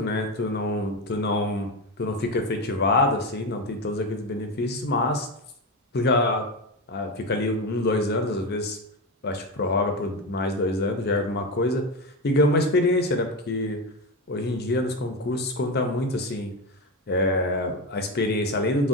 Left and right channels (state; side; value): normal; both; correlation 0.17